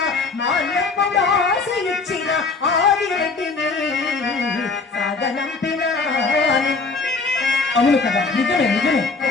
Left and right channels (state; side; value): quieter; right; 4.2 dB